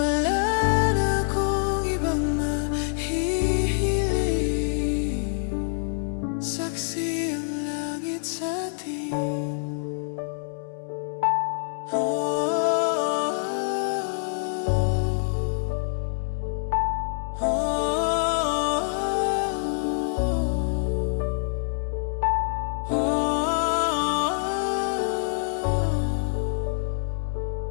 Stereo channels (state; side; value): silent; right; digital silence